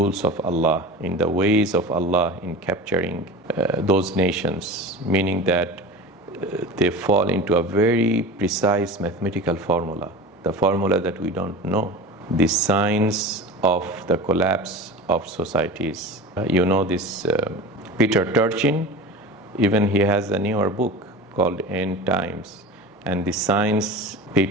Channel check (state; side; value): normal; both; correlation 0.33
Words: of Allah, in the ways of Allah in capturing those nations, meaning that they fall into a very precise mathematical formula, the formula that we don't know, the signs of the collapse of societies. You know this Peter Turchin, even he has a newer book called End Times, and the science,